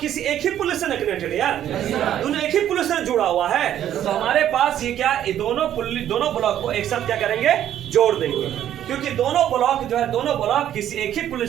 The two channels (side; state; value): left; quieter; 11.1 dB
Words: एक ही पुलिस से कनेक्टेड है? यार दोनों एक ही पुलिस से जुड़ा हुआ है। तो हमारे पास ये क्या, ये दोनों ब्लॉक को एक साथ क्या करेंगे? जोड़ देंगे, क्योंकि दोनों ब्लॉक किसी एक ही